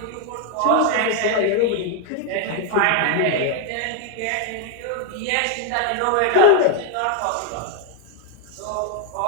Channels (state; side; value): different; both; correlation 0.00